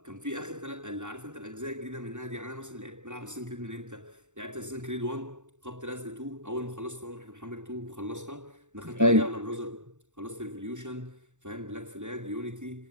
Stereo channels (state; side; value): late; left; 0.85 ms